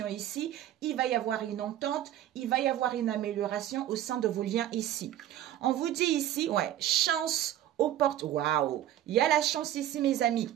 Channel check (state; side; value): quieter; left; 12.2 dB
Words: ici. Il va y avoir une entente, il va y avoir une amélioration au sein de vos liens ici. On vous dit ici, ouais, chance aux portes. Waouh! Il y a la chance ici, mes amis.